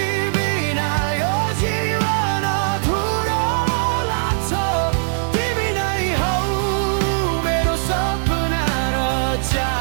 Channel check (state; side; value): silent; left; digital silence